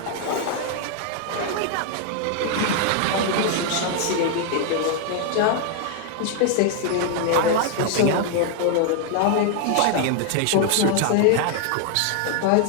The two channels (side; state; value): both; different; correlation 0.00